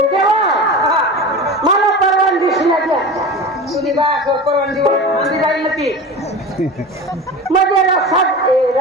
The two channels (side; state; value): both; normal; correlation 0.30